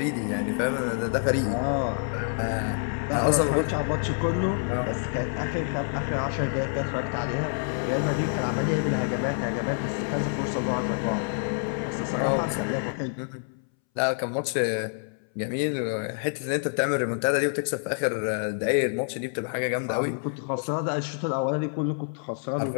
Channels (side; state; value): right; silent; 60 dB below the other